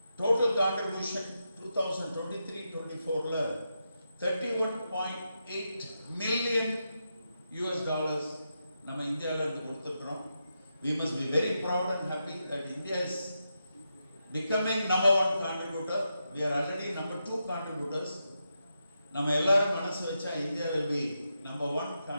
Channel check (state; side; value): inverted; both; correlation -0.86